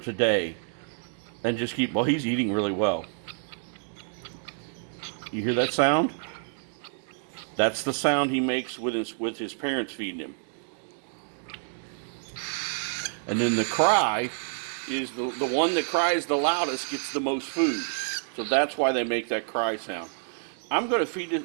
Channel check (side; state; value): left; silent; digital silence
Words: And just keep, well, he's eating really well. You hear that sound? That's the sound he makes with his parents feeding him. And then the cry is the one that cries the loudest gets the most food. So that's why they make that cry sound. I'm going to feed